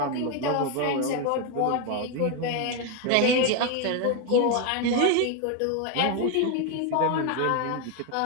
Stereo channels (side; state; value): both; different; correlation 0.01